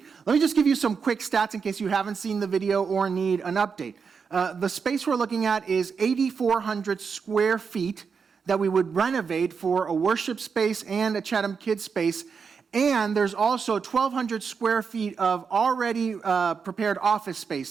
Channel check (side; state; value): left; quieter; 5.8 dB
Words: Let me just give you some quick stats in case you haven't seen the video or need an update. The space we're looking at is 8,400 square feet that we would renovate for a worship space and a Chatham Kids space. And there's also 1,200 square feet of already prepared office space